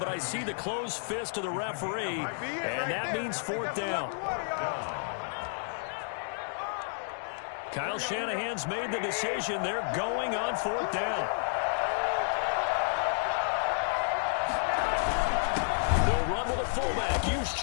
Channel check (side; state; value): right; silent; digital silence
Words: I see the closed fist of the referee, and that means 4th down. Kyle Shanahan's made the decision. They're going on 4th down. They'll run with a fullback,